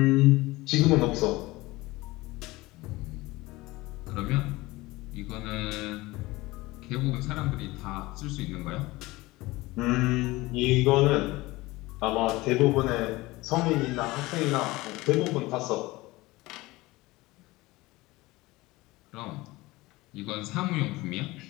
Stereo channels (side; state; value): right; quieter; 20.4 dB